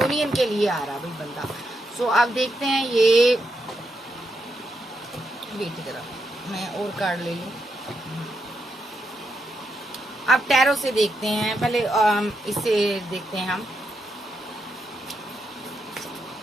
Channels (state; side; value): normal; both; correlation 0.82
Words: के लिए आ रहा भाई बंदा। सो अब देखते हैं ये, वेट की तरफ मैं और कार्ड ले लूँ। अब टैरो से देखते हैं, पहले इससे देखते हैं हम